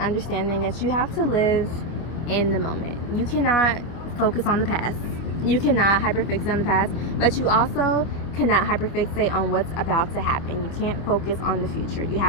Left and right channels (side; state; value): right; late; 25 ms